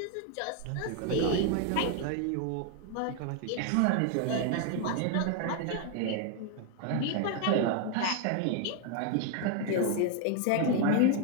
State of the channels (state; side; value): different; both; correlation 0.01